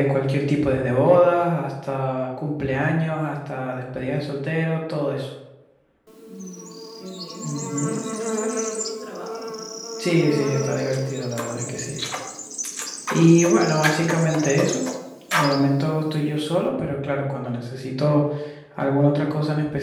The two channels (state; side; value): identical; both; correlation 1.00